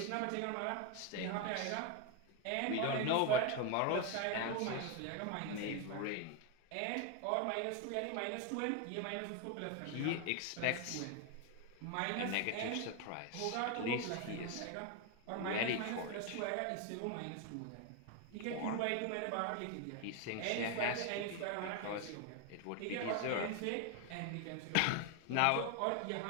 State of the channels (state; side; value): different; both; correlation 0.01